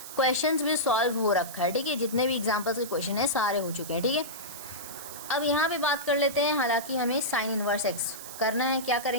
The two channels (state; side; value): noise; right; hiss, 12 dB below the sound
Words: क्वेश्चंस भी सॉल्व हो रखा है, ठीक है, जितने भी एग्जांपल्स के क्वेश्चन है सारे हो चुके हैं, ठीक है। अब यहाँ पे बात कर लेते हैं, हालांकि हमें साइन इनवर्स एक्स करना है, क्या